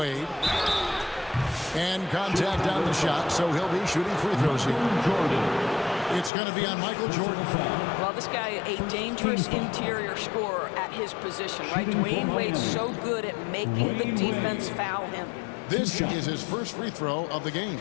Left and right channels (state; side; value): drops out; right; at 6.3 s